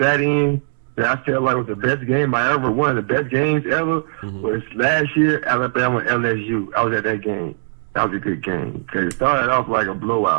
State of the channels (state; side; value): silent; left; digital silence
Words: in that I felt like was the best game I ever won. The best games ever was last year, Alabama LSU. I was at that game. That was a good game. Because it started off like a